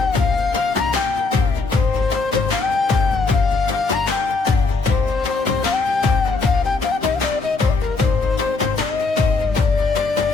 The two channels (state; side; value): quieter; right; 3.9 dB